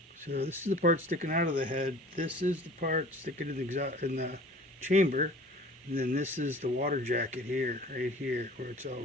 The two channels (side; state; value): both; normal; correlation 0.45